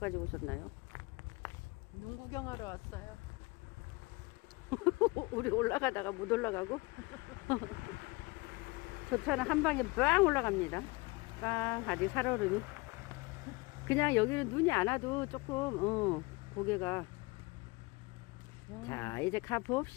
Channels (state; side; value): quieter; right; 25.1 dB